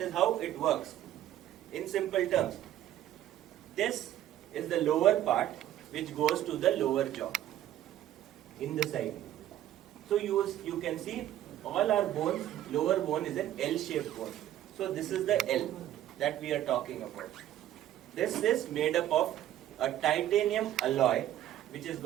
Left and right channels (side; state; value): left; quieter; 12.5 dB